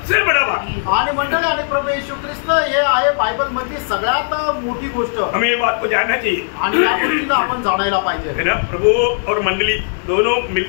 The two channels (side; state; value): right; silent; digital silence